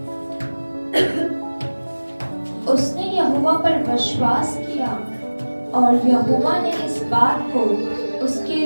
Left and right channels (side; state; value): both; inverted; correlation -1.00